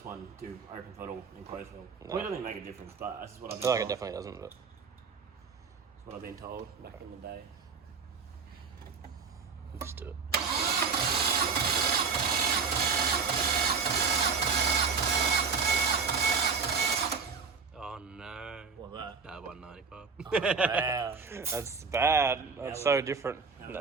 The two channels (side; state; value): left; quieter; 5.4 dB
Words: one, do open throttle and closed throttle. No. Well, it doesn't make a difference, but that's what I've I been feel like it told. definitely doesn't. But That's what I've been told back in the day. let's do it. Oh no. What's that? No, 195. Oh, wow. That's bad. That's so different. How No.